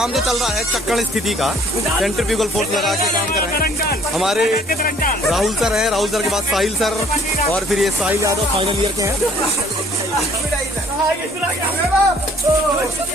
जो चल रहा है चक्कड़ स्थिति का, सेंट्रीफ्यूगल फोर्स लगा के काम कर रहे हैं हमारे राहुल सर हैं। राहुल सर के बाद साहिल सर, और फिर ये साहिल यादव फाइनल ईयर के हैं।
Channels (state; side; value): normal; both; correlation 0.58